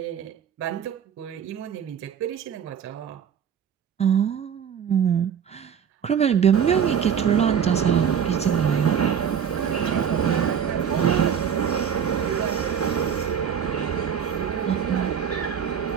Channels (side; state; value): left; quieter; 7.9 dB